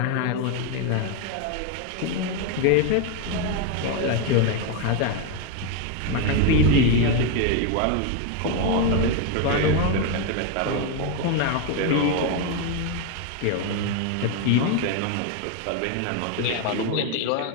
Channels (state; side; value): different; both; correlation 0.02